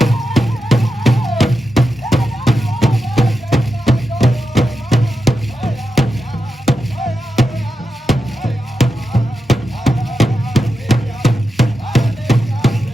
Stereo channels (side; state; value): both; normal; correlation 0.89